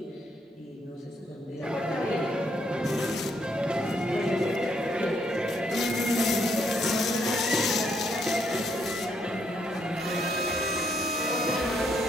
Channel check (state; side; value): normal; both; correlation 0.73